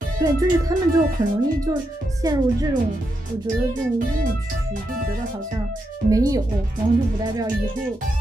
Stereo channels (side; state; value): both; normal; correlation 0.84